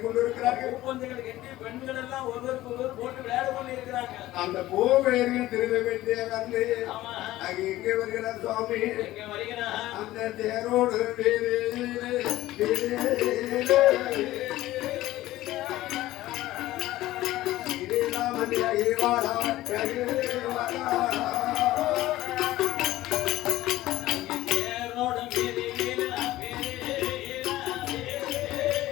இருக்கிறார்கள். பெண்கள் எல்லாம் ஒருவருக்கு ஒருவர் போட்டு விளையாடி கொண்டு இருக்கிறாங்க. அந்த கோவேர்கள் திரும்ப வேண்டிய வந்து எங்கே வருகிறார் சுவாமி? அந்த தேரோடு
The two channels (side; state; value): right; quieter; 16.1 dB